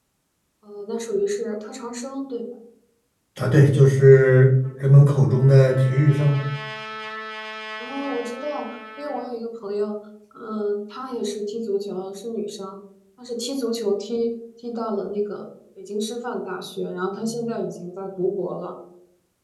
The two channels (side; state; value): both; identical; correlation 1.00